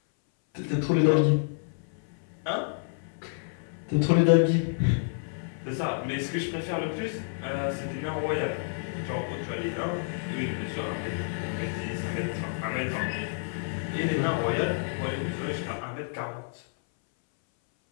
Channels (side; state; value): right; silent; 58 dB below the other